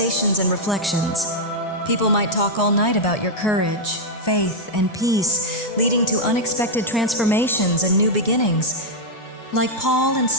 and reflections. People might talk all night about your courage, faith, and peace, leading to unexpected transformations and new beginnings. Like Paul and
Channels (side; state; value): both; normal; correlation -0.03